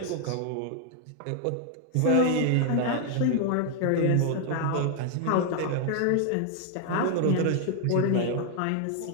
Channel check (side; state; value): both; different; correlation 0.00